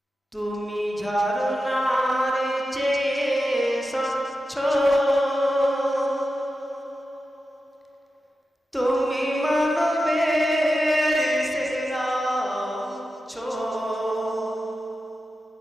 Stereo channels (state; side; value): normal; both; correlation 0.91